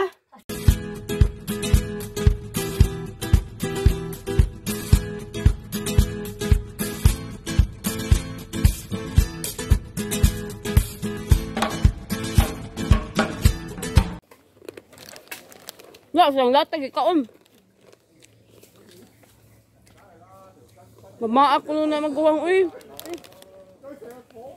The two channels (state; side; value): identical; both; correlation 1.00